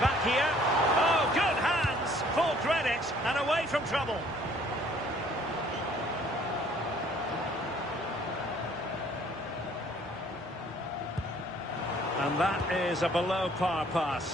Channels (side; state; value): both; normal; correlation 0.58